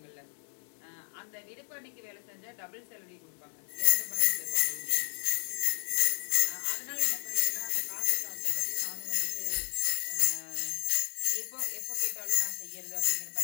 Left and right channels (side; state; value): right; silent; 56 dB below the other